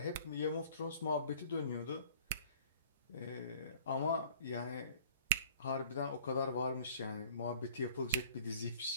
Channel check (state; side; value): inverted; both; correlation -0.50